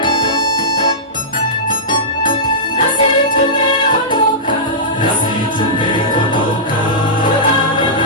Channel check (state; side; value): normal; both; correlation -0.16